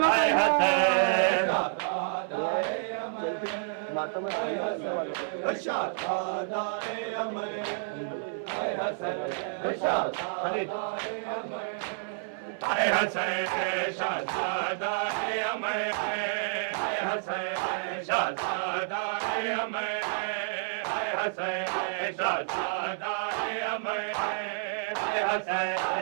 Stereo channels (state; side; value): silent; left; 58 dB below the other